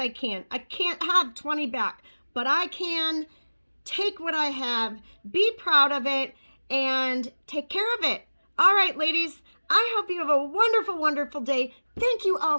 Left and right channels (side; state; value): both; inverted; correlation -1.00